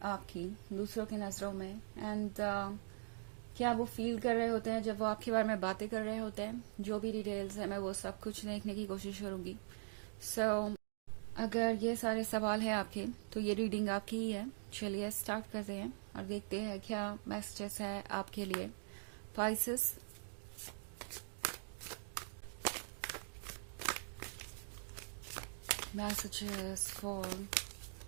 आपकी दूसरों की नज़रों में, एंड क्या वो फील कर रहे होते हैं जब वो आपके बारे में बातें कर रहे होते हैं। जो भी डिटेल्स है मैं वो सब कुछ देखने की कोशिश करूंगी। अगर ये सारे सवाल हैं आपके तो ये रीडिंग आपकी ही है। चलिए स्टार्ट करते हैं और देखते हैं क्या मैसेजेस है आपके लिए। Pisces, messages for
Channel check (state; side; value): silent; left; digital silence